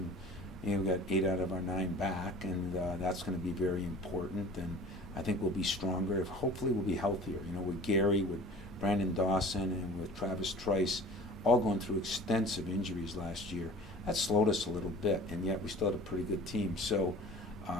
We've got 8 out of our 9 back, and that's going to be very important. And I think we'll be stronger. Hopefully, we'll be healthier. With Gary, with Brandon Dawson, and with Travis Trice, all going through extensive injuries last year. That slowed us a little bit, and yet we still had a pretty good team. So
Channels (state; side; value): normal; both; correlation 0.44